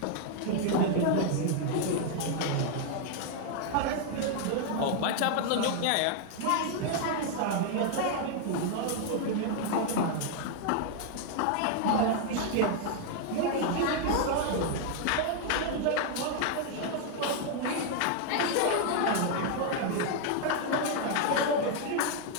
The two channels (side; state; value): both; different; correlation 0.00